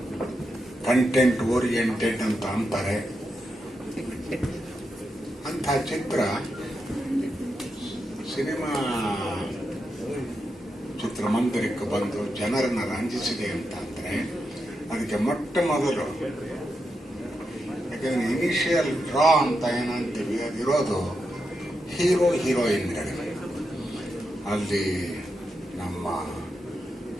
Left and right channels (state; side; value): normal; both; correlation 0.86